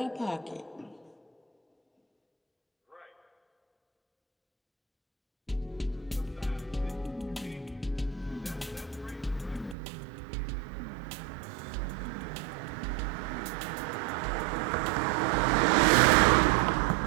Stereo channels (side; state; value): left; drops out; at 9.8 s